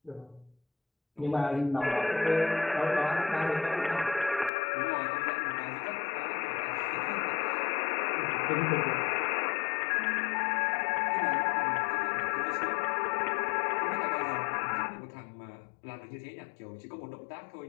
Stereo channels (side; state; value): right; drops out; at 4.5 s